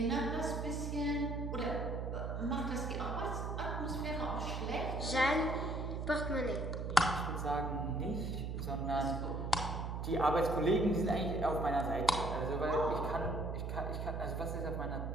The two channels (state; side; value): noise; right; hum, 3 dB below the sound